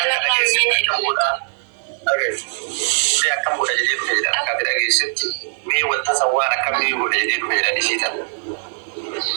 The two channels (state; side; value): silent; left; digital silence